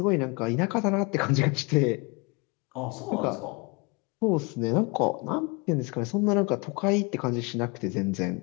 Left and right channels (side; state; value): right; quieter; 29.6 dB